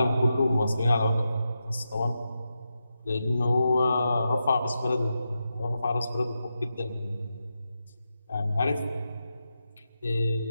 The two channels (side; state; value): both; inverted; correlation -0.88